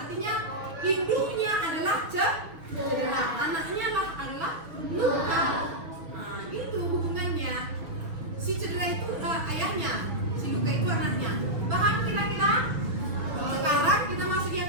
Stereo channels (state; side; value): late; left; 6.6 ms